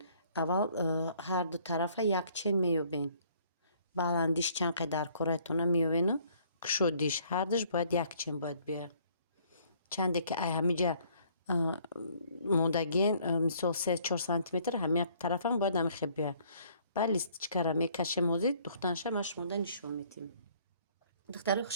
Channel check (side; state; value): both; inverted; correlation -0.61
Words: аввал ҳар ду тарафа як чен меёбем. Баландиш чанд қадар коратона меёбену кушодиш ҳардаш бояд як чен бояд биёяд. Чанде ки ай ҳамиҷа мондагиен мисол 3-4 сантиметр ҳамин тарафам бояд ҳамин хел биёяд. Баъд листичкаро мекашем ҳозир духтанаша ма шумода нишон медиҳем. Духтари